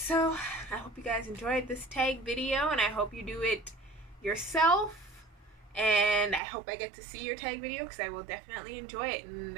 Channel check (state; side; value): drops out; left; at 6.4 s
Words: I hope you guys enjoyed this tag video, and I hope you do it yourself, and I hope I get to see your tag video, because I will definitely enjoy it. And